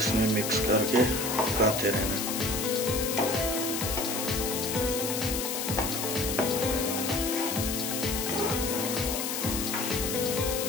मिक्स करके पकाते रहना।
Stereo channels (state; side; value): noise; left; hiss, 2 dB below the sound